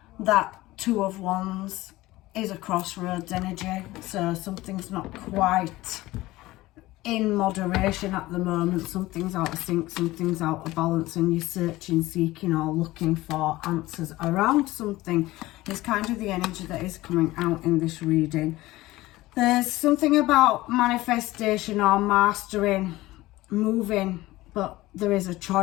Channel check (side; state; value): right; quieter; 18.2 dB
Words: that Two of Wands is a crossroads energy. So something's not quite in moderation at the moment. Something's out of sync, something's out of balance, and you're searching, seeking or looking for answers around something. It's kind of the energy that is coming out in this reading. There's something about manifestation or mastering, moving, but there is a